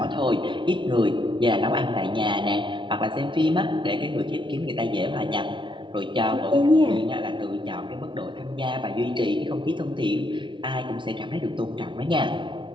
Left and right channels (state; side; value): late; left; 0.24 ms